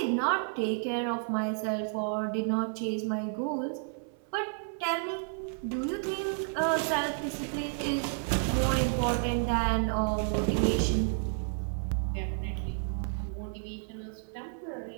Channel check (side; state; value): left; silent; 56 dB below the other